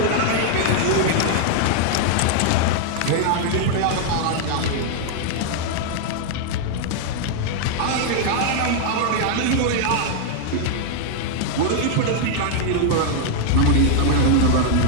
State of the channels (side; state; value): both; different; correlation 0.00